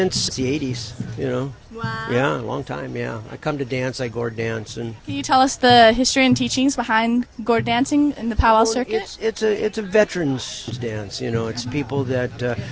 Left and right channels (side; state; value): both; identical; correlation 1.00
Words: the 80s, you know. Wow. Yeah, a long time, yeah. I come to dance, I gourd dance. And Can you tell us the history and teachings behind gourd dancing in the powwow circuit? It's a veterans dance, you know. It's people that,